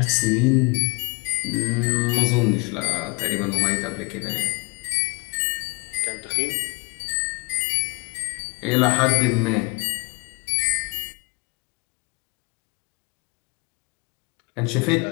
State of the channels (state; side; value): quieter; right; 29.6 dB